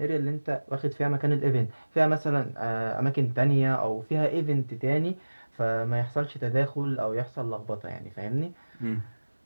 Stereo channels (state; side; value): inverted; both; correlation -1.00